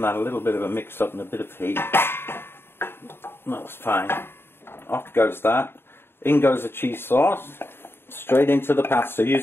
that a little bit of a mix up and a bit of heat. That's fine. Off goes that. In goes the cheese sauce. Straight into the pasta.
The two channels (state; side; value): late; right; 0.11 ms